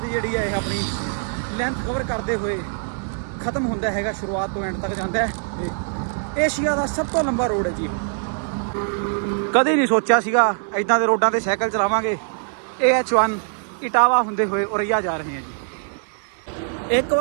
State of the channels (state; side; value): silent; left; digital silence